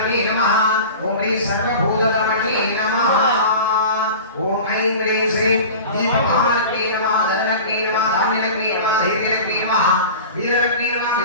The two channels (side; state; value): both; inverted; correlation -0.36